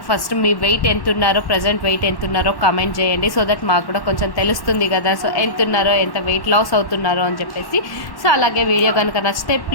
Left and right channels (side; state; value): right; late; 1.1 ms